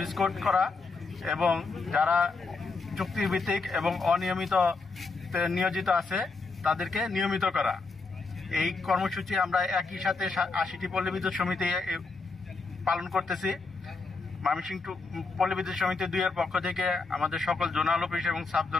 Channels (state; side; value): quieter; right; 4.1 dB